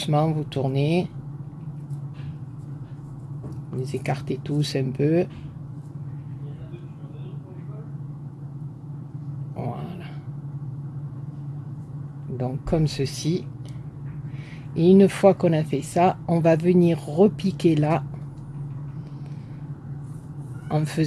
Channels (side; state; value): both; identical; correlation 1.00